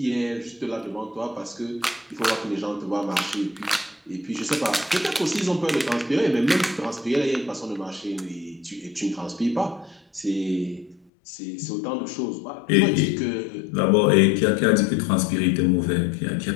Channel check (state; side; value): drops out; right; at 11.1 s